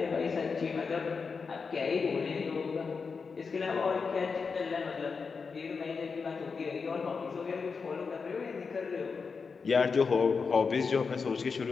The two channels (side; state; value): right; quieter; 5.1 dB